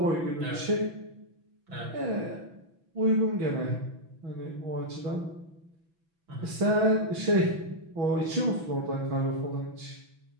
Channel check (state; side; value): late; left; 6.0 ms